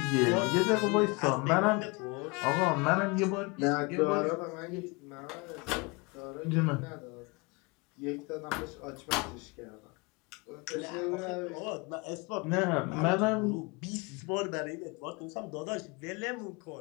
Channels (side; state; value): right; quieter; 27.8 dB